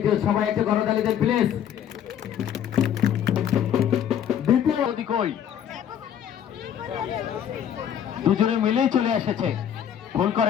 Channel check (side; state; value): right; quieter; 9.5 dB